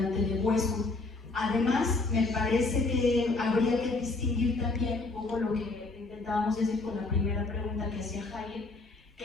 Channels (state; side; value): quieter; right; 3.4 dB